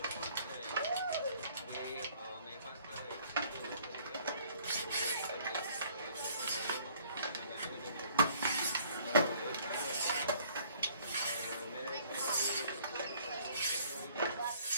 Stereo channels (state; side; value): inverted; both; correlation -0.58